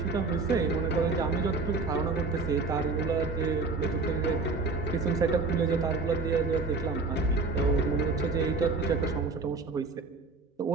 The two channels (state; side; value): quieter; left; 3.9 dB